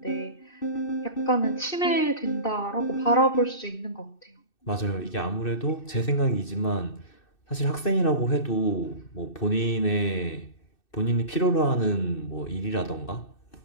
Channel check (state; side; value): late; right; 2.6 ms